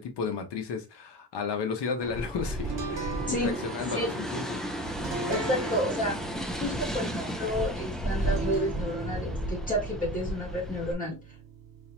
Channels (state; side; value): normal; both; correlation 0.34